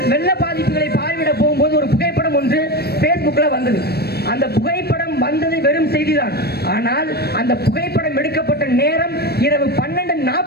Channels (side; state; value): right; late; 0.47 ms